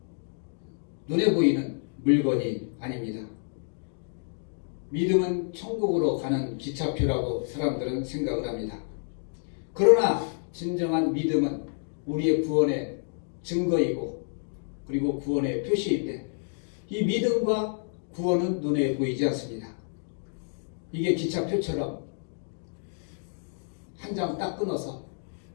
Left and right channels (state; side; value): silent; right; digital silence